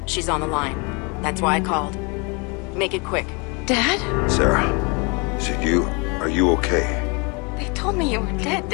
She's on the line. That's why I called. Make it quick. Dad? Sarah, is it you? Are you okay? They told me you were dead,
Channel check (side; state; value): right; quieter; 30.6 dB